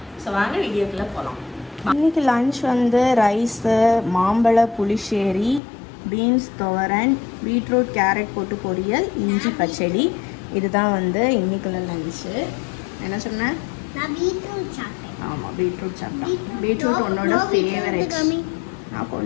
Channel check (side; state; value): right; drops out; at 5.6 s